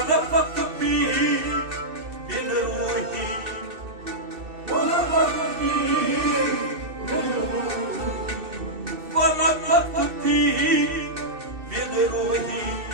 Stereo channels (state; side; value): late; left; 2.6 ms